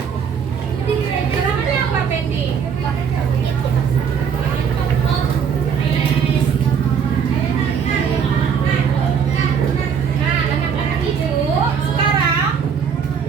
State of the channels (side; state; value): left; quieter; 7.0 dB